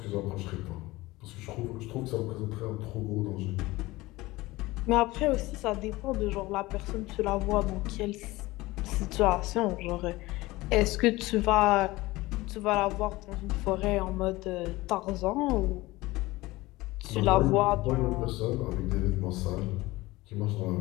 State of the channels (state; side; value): quieter; right; 19.9 dB